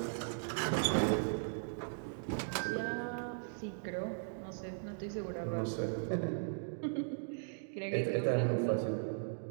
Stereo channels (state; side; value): silent; left; digital silence